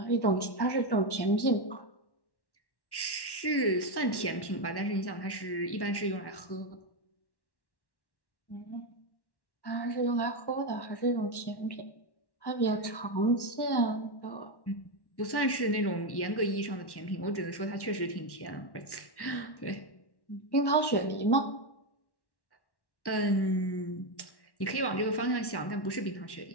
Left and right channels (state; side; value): late; right; 1.1 ms